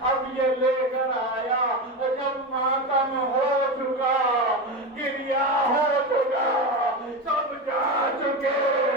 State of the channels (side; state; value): both; normal; correlation 0.19